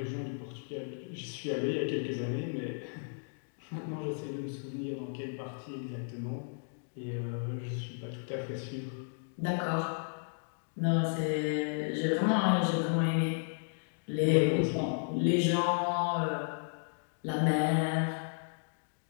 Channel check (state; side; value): silent; right; digital silence